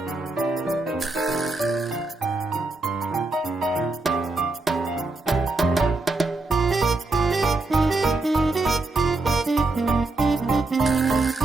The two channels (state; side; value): quieter; left; 3.2 dB